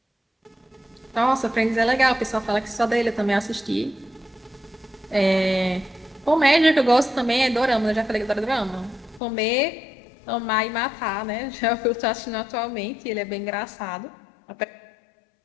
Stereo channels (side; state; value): right; drops out; at 9.2 s